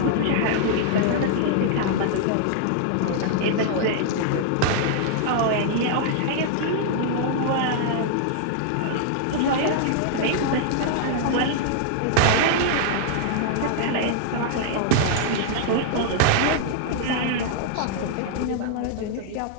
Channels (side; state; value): both; different; correlation -0.01